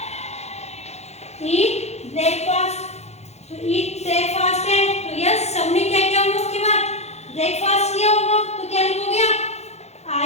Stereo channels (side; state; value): right; late; 0.31 ms